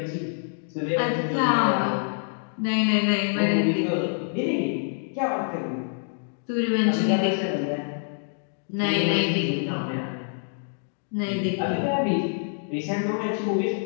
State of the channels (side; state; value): right; silent; digital silence